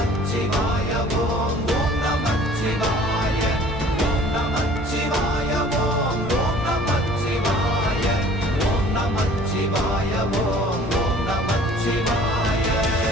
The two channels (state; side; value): normal; both; correlation 0.51